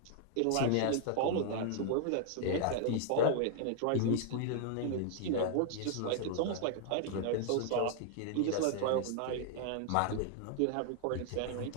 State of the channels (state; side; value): different; both; correlation -0.01